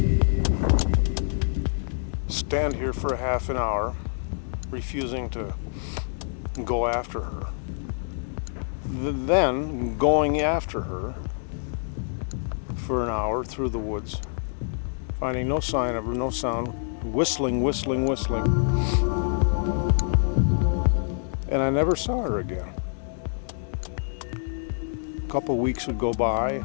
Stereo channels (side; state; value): right; silent; digital silence